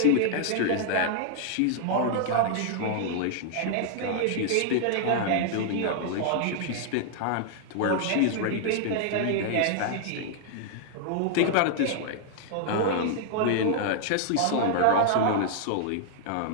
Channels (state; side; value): different; both; correlation -0.01